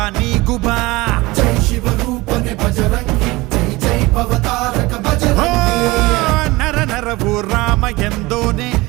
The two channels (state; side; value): quieter; left; 21.5 dB